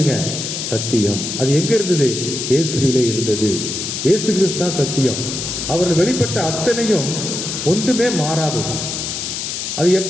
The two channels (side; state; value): left; noise; hiss, 4 dB below the sound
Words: சத்தியம். அது எங்க இருந்தது? இயேசுவிலே இருந்தது. இயேசு கிறிஸ்து தான் சத்தியம். அவர்கள் வெளிப்பட்ட அத்தனையும் ஒன்றுமே மாறாதது. அது